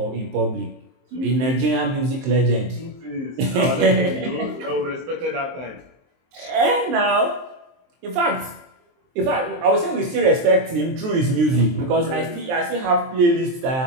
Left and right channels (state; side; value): late; left; 23 ms